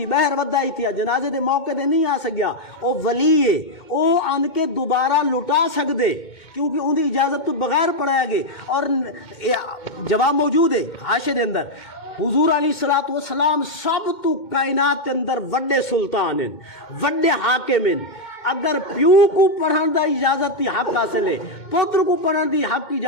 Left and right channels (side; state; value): right; late; 2.2 ms